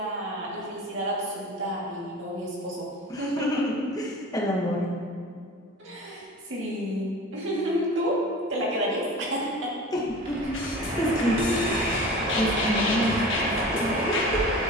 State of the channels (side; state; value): both; normal; correlation 0.37